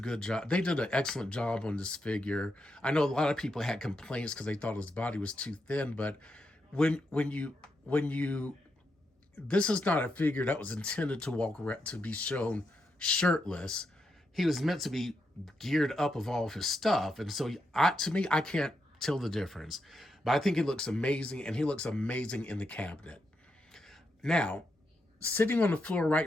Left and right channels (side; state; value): both; normal; correlation 0.83